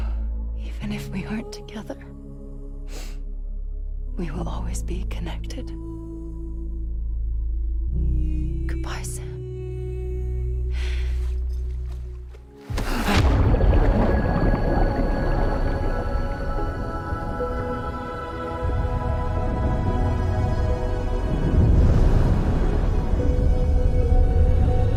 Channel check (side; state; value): both; identical; correlation 1.00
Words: Even if we aren't together, we will always be connected. Goodbye, Sam.